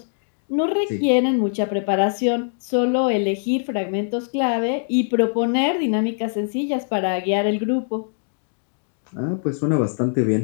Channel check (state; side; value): silent; right; digital silence